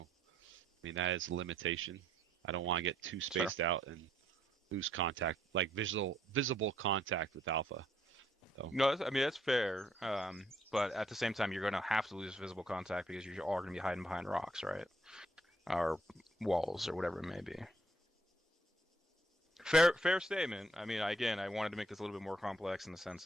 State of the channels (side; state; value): both; normal; correlation 0.68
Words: mean, that is a limitation. I don't want to get too spaced out and lose contact, like visible contact with Alpha. So. No, I mean that's fair. But at the same time, you're going to have to lose visible contact because you are going to be hiding behind rocks, right? Or walls or whatever it may be. Fair statement. I mean, again, I wanted to make this a little bit more complex in the